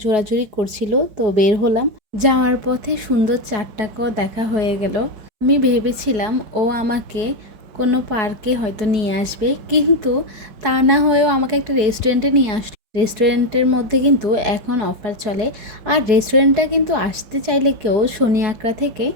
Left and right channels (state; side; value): late; left; 4.7 ms